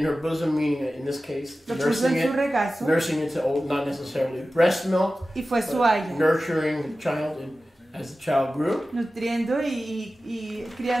in her bosom, meaning in this case, Lo puso nursing en su it, regazo nursing it to old, not necessarily breast milk, y fue su but haya. nurturing the child as the child grew. Nutriendo y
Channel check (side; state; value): both; normal; correlation 0.95